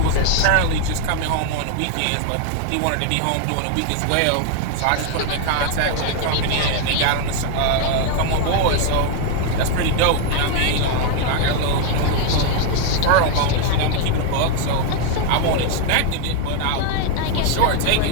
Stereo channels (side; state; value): both; different; correlation 0.00